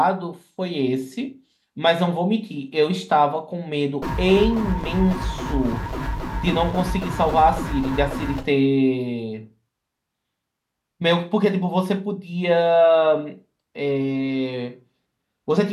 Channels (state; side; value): identical; both; correlation 1.00